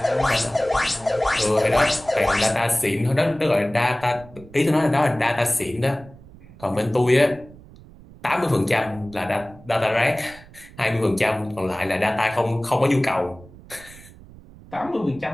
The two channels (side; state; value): right; noise; rumble, 21 dB below the sound